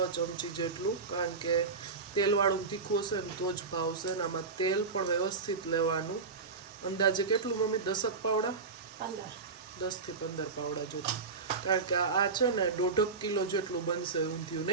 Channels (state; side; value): quieter; left; 4.6 dB